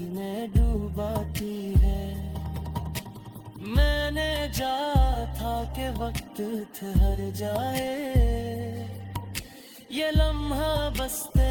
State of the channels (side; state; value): both; identical; correlation 1.00